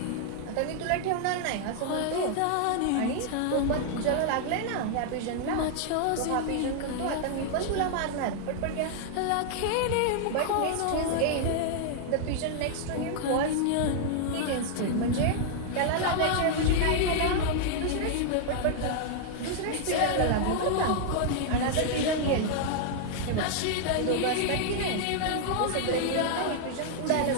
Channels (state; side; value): different; both; correlation -0.01